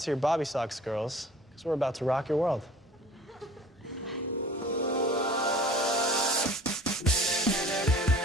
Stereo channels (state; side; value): normal; both; correlation 0.46